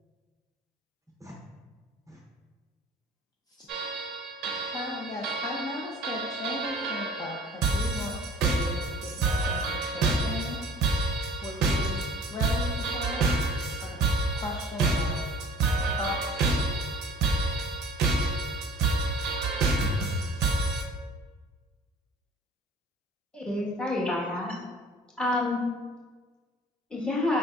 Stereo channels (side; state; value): both; normal; correlation 0.47